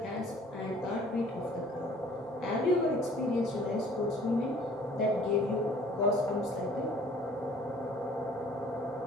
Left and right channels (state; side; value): normal; both; correlation 0.53